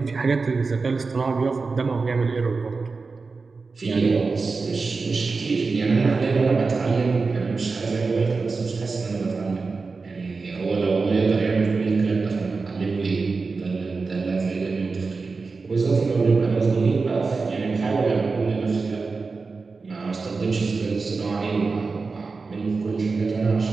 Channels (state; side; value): quieter; left; 4.3 dB